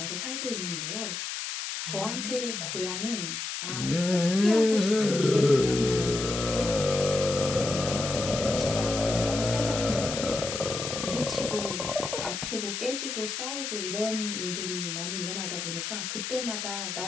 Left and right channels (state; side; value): noise; left; hiss, 4 dB below the sound